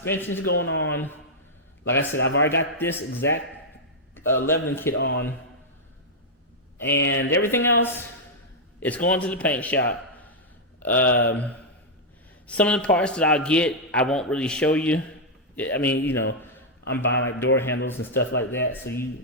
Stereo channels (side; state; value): both; normal; correlation -0.05